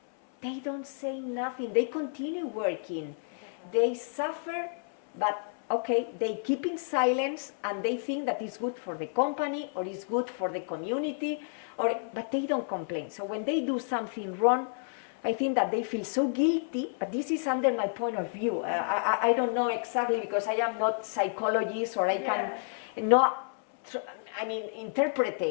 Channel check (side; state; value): right; silent; 58 dB below the other